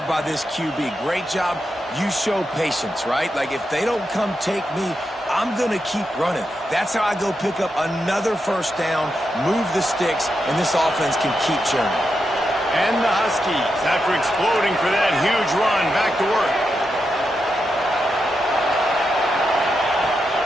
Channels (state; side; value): normal; both; correlation 0.86